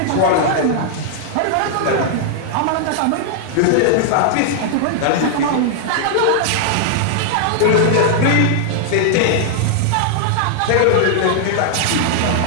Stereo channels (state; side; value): different; both; correlation -0.01